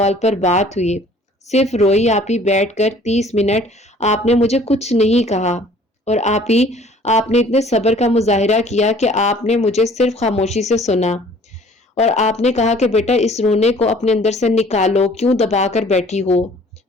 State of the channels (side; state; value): both; normal; correlation 0.53